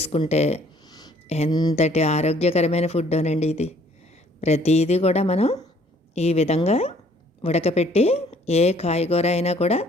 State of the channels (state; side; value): normal; both; correlation 0.60